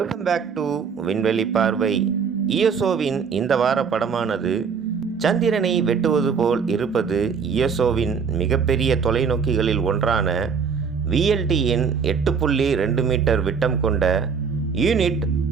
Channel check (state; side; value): quieter; left; 6.1 dB